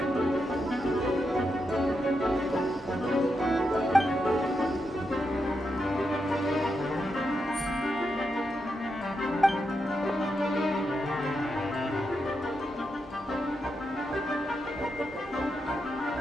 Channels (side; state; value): both; normal; correlation 0.85